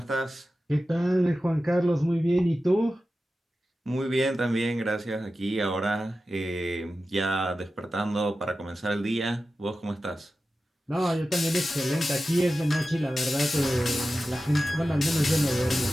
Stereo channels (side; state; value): both; normal; correlation 0.93